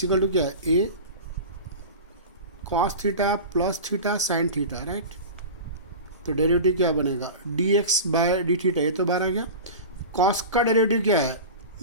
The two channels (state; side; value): inverted; both; correlation -0.31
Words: equal to क्या है a cos theta plus theta sin theta right. तो derivative क्या बनेगा d x by D theta. ये तो बाहर आ गया. कॉस का डेरिवेटिव क्या है